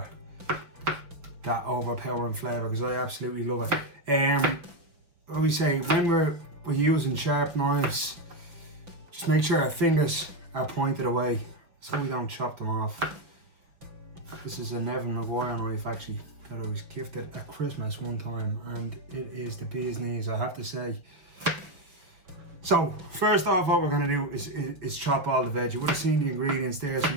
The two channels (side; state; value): left; late; 5.7 ms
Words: that overpowering flavour, because I absolutely love it. What we say, when we're using sharp knives, just make sure our fingers are pointed away so we don't chop them off. This is a Neville Maguire knife actually that I was gifted at Christmas one time, and it is the bee's knees, I have to say. So first off, what we're going to do is chop all the veg. You would have seen the ingredients there.